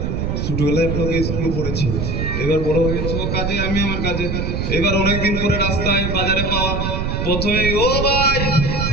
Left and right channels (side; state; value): right; noise; rumble, 1 dB below the sound